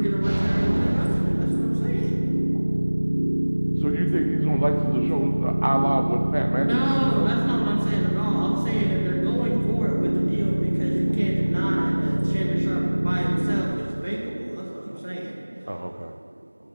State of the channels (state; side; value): inverted; both; correlation -1.00